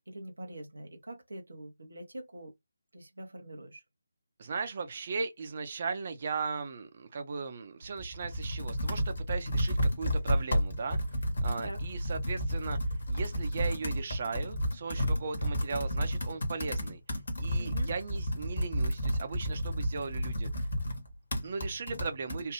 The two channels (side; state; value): both; inverted; correlation -0.86